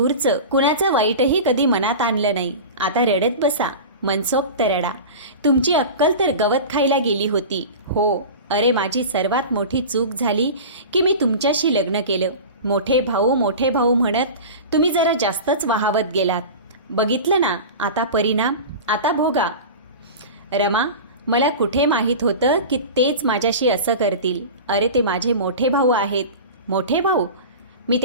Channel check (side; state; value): both; inverted; correlation -0.32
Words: कुणाचं वाईटही कधी मनात आणलं नाही. आता रडत बसा, मनसोक्त रडा. तुमची अक्कल तर गवत खायला गेली होती. हो, अरे माझी सर्वात मोठी चूक झाली की मी तुमच्याशी लग्न केलं. मोठे भाऊ म्हणत तुम्ही जरा जास्तच वाहावत गेलात. बघितलं ना आता परिणाम? आता भोगा. रमा, मला कुठे माहीत होतं की तेच माझ्याशी असं करतील. अरे ते माझे मोठे भाऊ आहेत. मोठे भाऊ? मी